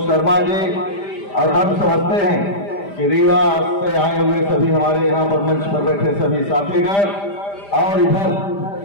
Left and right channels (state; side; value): late; right; 5.0 ms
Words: शर्मा जी, और हम समझते हैं कि रीवा से आए हुए सभी हमारे यहाँ पर मंच पर बैठे सभी साथीगण और इधर